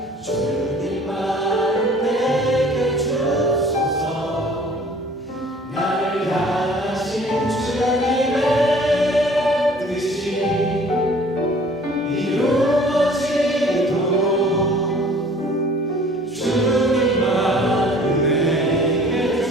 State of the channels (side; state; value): both; normal; correlation 0.51